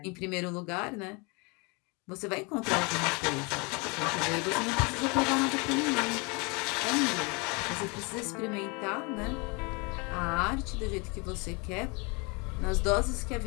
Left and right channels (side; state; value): right; quieter; 30.0 dB